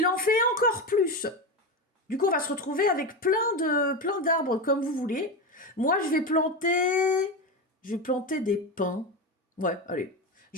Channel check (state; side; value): normal; both; correlation 0.17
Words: en fait encore plus. Du coup, on va se retrouver avec plein d'arbres comme vous voulez. Moi, je vais planter des pins. Ouais, allez.